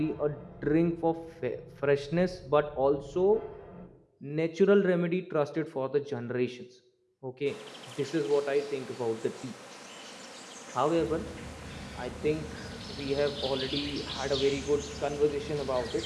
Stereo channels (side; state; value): both; identical; correlation 1.00